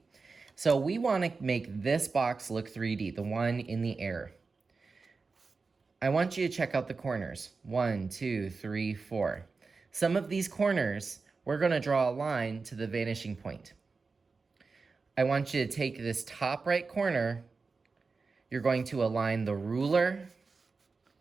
So we wanna make this box look 3D, the one in the air. I want you to check out the corners. 1, 2, 3, 4. Some of these corners, we're gonna draw a line to the vanishing point. I want you to take this top right corner you're going to align the ruler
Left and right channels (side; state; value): left; quieter; 4.3 dB